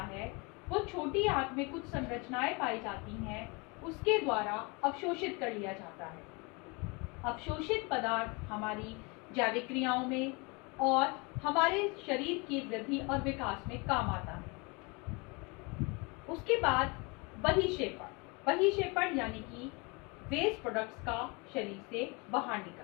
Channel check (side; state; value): right; quieter; 29.1 dB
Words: है, वो छोटी आंत में कुछ संरचनाएं पाई जाती हैं, उसके द्वारा अवशोषित कर लिया जाता है। अवशोषित पदार्थ हमारी जैविक क्रियाओं में और हमारे शरीर की वृद्धि और विकास में काम आता है। उसके बाद बहिक्षेपण यानी कि वेस्ट प्रोडक्ट्स का शरीर से बाहर